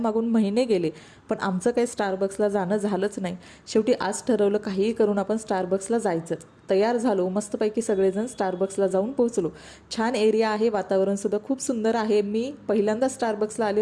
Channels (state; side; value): identical; both; correlation 1.00